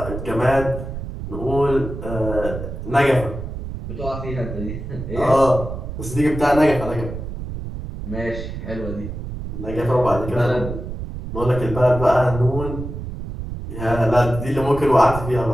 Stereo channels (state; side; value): noise; right; rumble, 7 dB below the sound